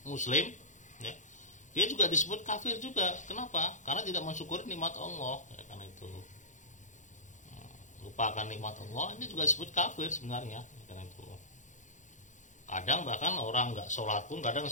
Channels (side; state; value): right; late; 0.36 ms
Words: muslim ya, dia juga disebut kafir juga. Kenapa? Karena tidak mensyukuri nikmat Allah ya kan itu. Lupakan nikmat Allah, ini juga disebut kafir sebenarnya ya kan itu. Kadang bahkan orang nggak sholat pun kadang